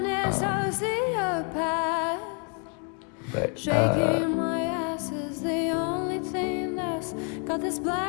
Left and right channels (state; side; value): quieter; right; 39.7 dB